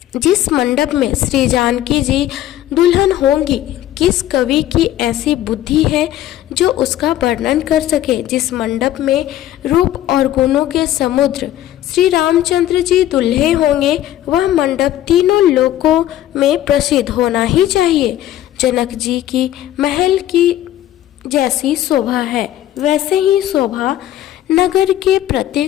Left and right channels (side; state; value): right; quieter; 13.0 dB